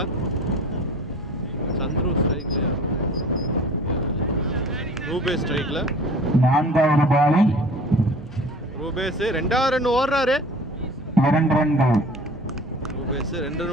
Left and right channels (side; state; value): both; normal; correlation 0.44